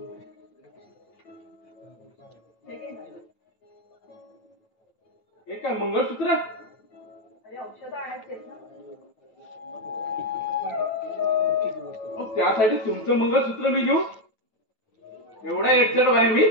हे काय मंगळसूत्र? अरे औषध आणायची आहेत ना. त्यासाठी तुमचं मंगळसूत्र मी घेऊ? एवढा एकचड आहे मी?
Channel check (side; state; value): right; late; 9.2 ms